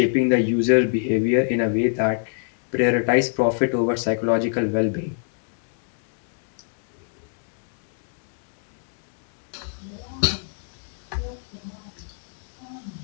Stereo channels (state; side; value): silent; right; digital silence